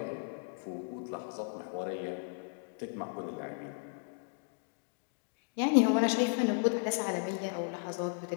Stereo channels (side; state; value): right; silent; digital silence